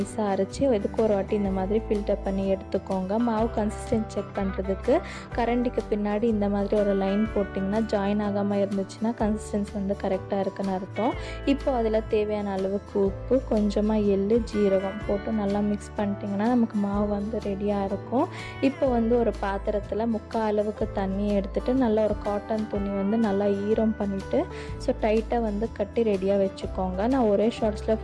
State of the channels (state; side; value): identical; both; correlation 1.00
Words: அரைச்சி எதுக்கு ஒரு வாட்டி இந்த மாதிரி ஃபில்டர் பண்ணி எடுத்துக்கோங்க. மாவு கன்சிஸ்டன்ட் செக் பண்ணுறதுக்கு கரண்டிக்கு பின்னாடி இந்த மாதிரி ஒரு லைன் போட்டிங்கன்னா ஜாயின் ஆகாமல் இருந்துச்சுன்னா கன்சிஸ்டன்சி கரெக்டாக இருக்குன்னு அர்த்தம். இப்போ அதில் தேவையான அளவுக்கு உப்பு, கொஞ்சமாக எள்ளு, ஜீரகம் போட்டு நல்லா மிக்ஸ் பண்ணிட்டிங்கன்னா நமக்கு மாவு ரெடியாக இருக்கும். இப்போ ஒரு பாத்திரத்தில் 3/4 அளவுக்கு தண்ணியை எடுத்துகிட்டு நல்லா ஒரு காட்டன் துணி நல்லா ஈரம் பண்ணிவிட்டு ஸோ டைட்டாக கட்டி ரெடியாக வச்சுக்கோங்க. நான் ஒரே ஷார்ட்ஸில்